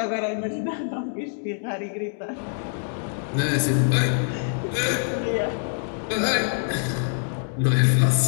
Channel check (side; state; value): right; silent; digital silence